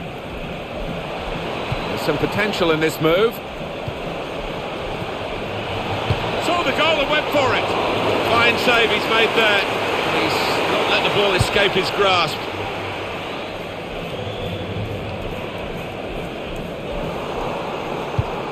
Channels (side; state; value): both; identical; correlation 1.00